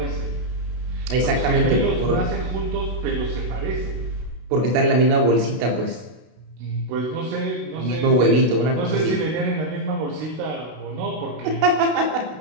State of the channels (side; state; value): left; late; 32 ms